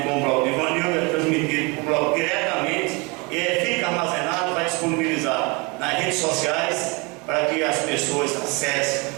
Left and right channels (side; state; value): left; quieter; 28.5 dB